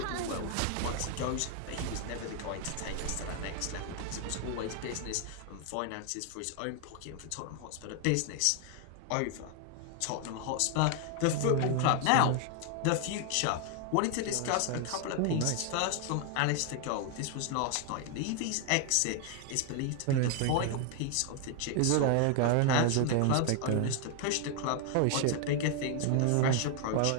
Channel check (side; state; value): both; different; correlation 0.00